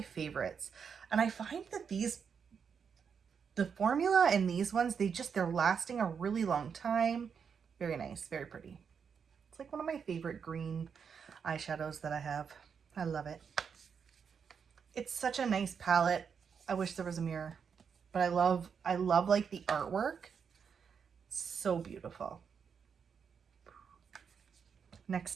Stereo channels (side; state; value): left; quieter; 6.6 dB